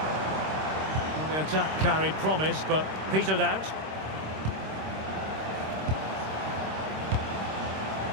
Well, the attack carried promise, but petered out.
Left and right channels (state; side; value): late; left; 26 ms